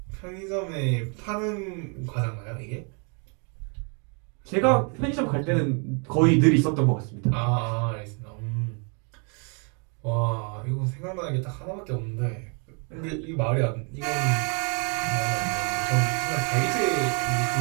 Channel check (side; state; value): left; quieter; 37.2 dB